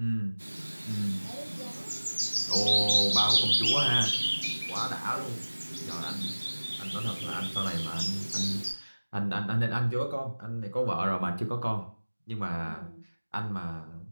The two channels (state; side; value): inverted; both; correlation -1.00